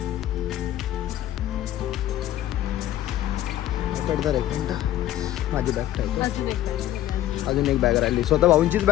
आयपॅड धरा एक मिनटं. माझी बॅग ठेवतो. अजून एक बॅग राहिली. स्वतः भाऊंचीच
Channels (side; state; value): right; quieter; 13.1 dB